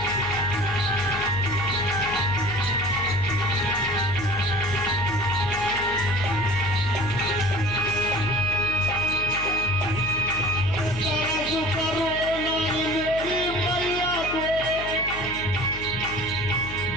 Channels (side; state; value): left; noise; hum, 11 dB below the sound